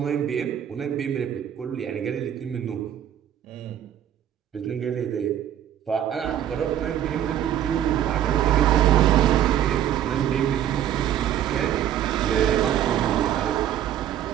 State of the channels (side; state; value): left; quieter; 10.6 dB